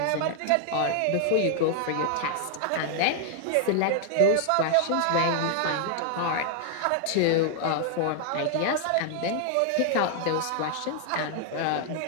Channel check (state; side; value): different; both; correlation 0.00